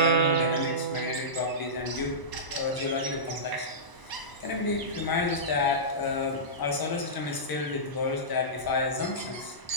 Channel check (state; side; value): late; right; 1.0 ms